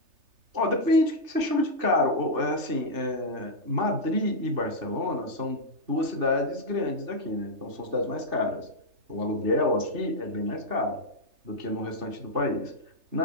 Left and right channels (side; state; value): left; late; 3.3 ms